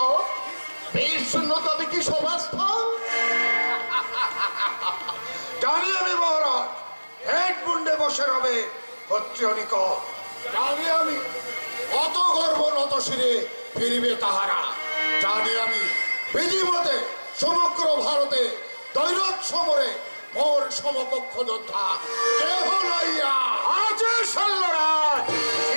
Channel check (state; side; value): inverted; both; correlation -1.00